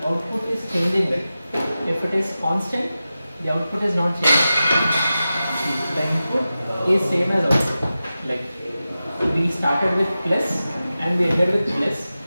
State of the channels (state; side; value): inverted; both; correlation -0.94